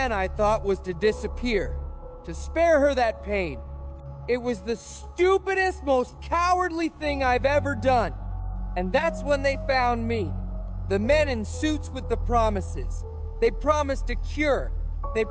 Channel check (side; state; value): both; identical; correlation 1.00